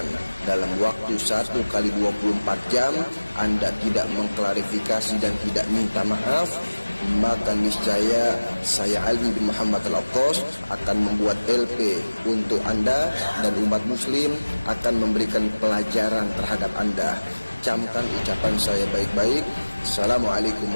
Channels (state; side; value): inverted; both; correlation -1.00